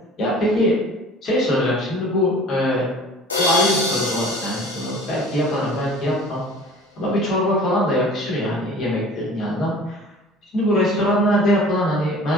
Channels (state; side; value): normal; both; correlation 0.45